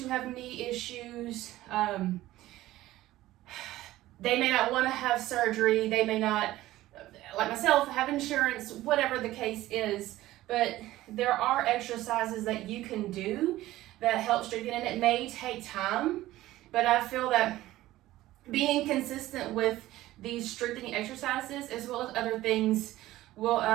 have knee issues. They may not want to have surgery. They may not, like myself, have insurance, whatever the case is. But there are exercises that you can do that help strengthen, and it may take time, but I feel that being consistent with these strengthening exercises as well as other things will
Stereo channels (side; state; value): left; quieter; 16.0 dB